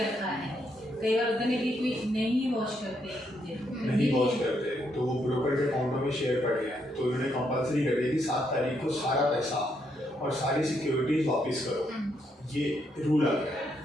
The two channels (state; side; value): normal; both; correlation 0.76